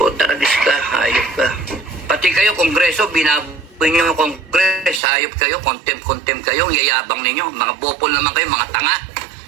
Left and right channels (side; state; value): left; drops out; at 5.0 s